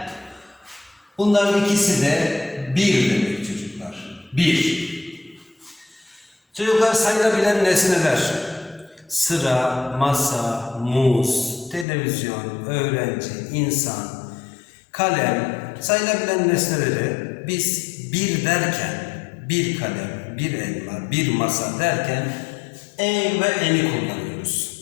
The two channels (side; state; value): right; drops out; at 11.9 s